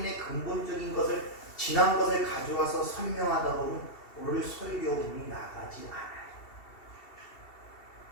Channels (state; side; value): late; right; 2.7 ms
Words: 근본적인 것을 지난 것을 가져와서 설명하다 보면 오늘 설교문이 나가지 않아요.